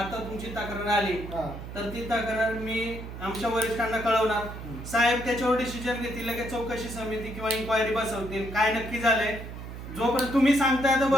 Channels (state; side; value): noise; right; hum, 10 dB below the sound